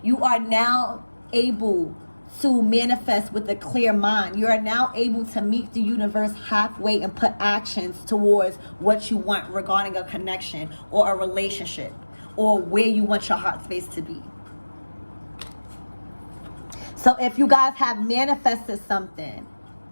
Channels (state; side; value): inverted; both; correlation -1.00